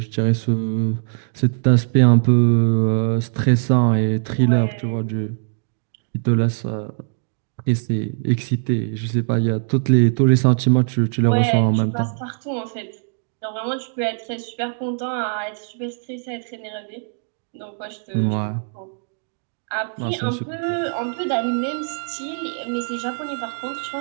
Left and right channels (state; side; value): silent; left; digital silence